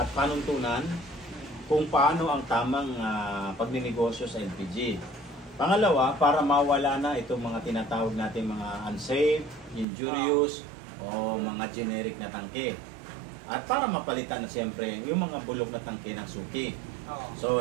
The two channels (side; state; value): left; drops out; at 9.9 s